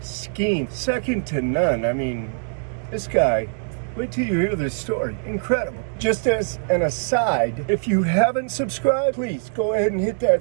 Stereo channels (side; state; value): left; silent; digital silence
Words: scheme, second to none. I mean, this guy, wait till you hear this story. Incredible. Just as an aside, if you haven't subscribed, please go ahead and hit